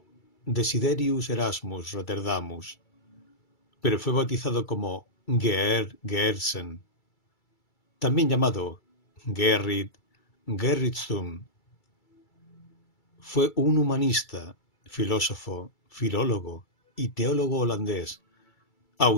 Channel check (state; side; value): late; right; 2.3 ms